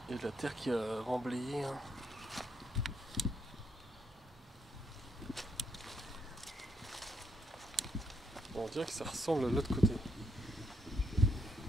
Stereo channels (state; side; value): normal; both; correlation 0.75